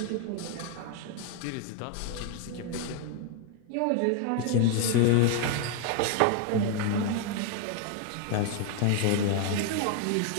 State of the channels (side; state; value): both; different; correlation 0.00